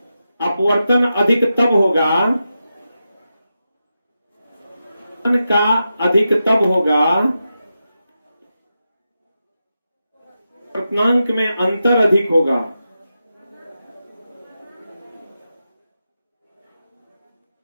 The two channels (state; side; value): inverted; both; correlation -0.89